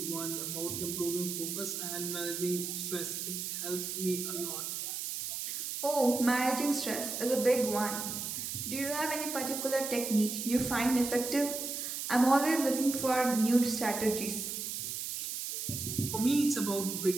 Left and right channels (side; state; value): right; noise; hiss, 4 dB below the sound